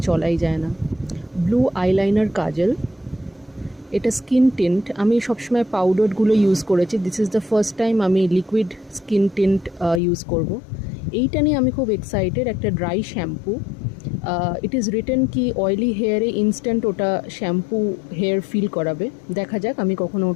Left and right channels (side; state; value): right; drops out; at 10.0 s